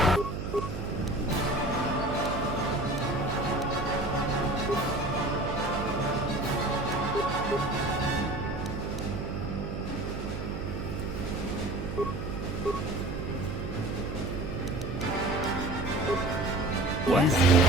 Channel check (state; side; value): noise; right; hum, 5 dB below the sound